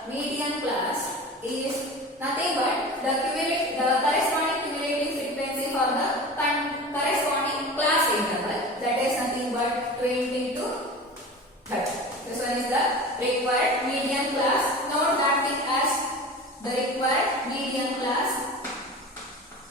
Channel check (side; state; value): both; normal; correlation 0.34